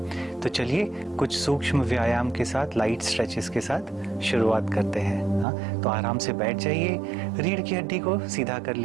तो चलिए कुछ सूक्ष्म व्यायाम के साथ, लाइट स्ट्रेचेस के साथ शुरुआत करते हैं। हाँ, तो आराम से बैठ जाइए, रीढ़ की हड्डी को सीधा कर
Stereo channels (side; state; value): left; drops out; at 5.5 s